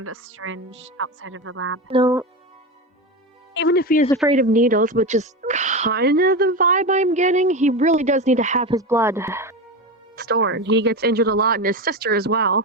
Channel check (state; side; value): normal; both; correlation 0.20